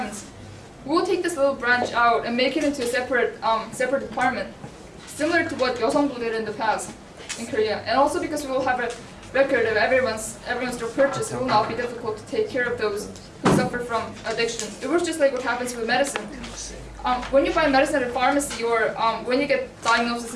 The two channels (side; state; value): both; identical; correlation 1.00